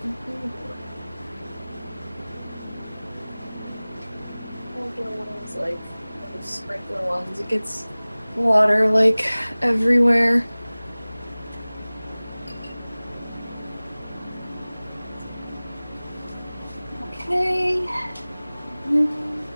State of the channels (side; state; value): both; inverted; correlation -0.99